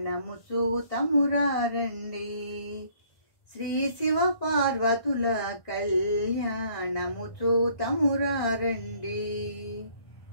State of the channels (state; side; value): late; right; 1.9 ms